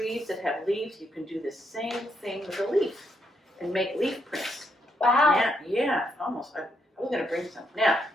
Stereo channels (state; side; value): normal; both; correlation 0.77